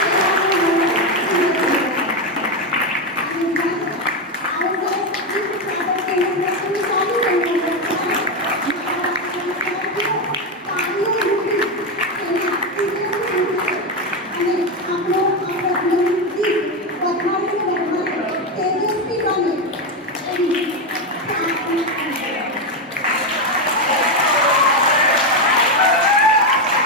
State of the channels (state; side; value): normal; both; correlation 0.09